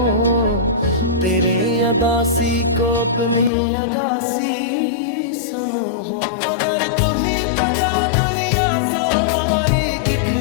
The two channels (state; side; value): drops out; right; at 3.5 s